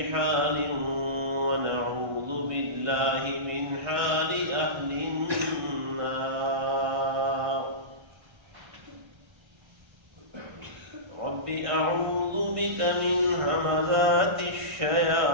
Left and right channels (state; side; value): late; left; 1.5 ms